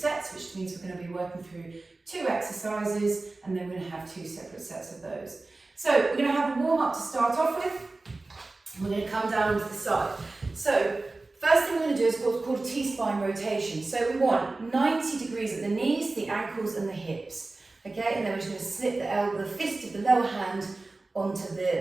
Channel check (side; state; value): left; quieter; 3.3 dB